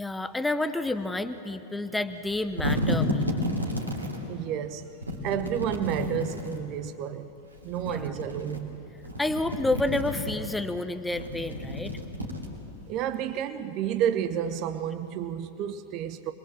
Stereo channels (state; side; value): normal; both; correlation 0.35